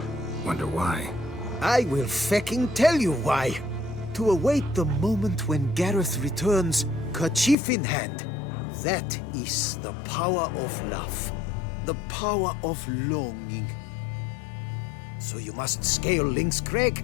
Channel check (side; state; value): right; drops out; at 7.6 s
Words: Wonder why. I will fecking tell you why. To await the moment when Gareth returns, kerchief in hand. That is the power of love. The power of longing. So you must scale Lynx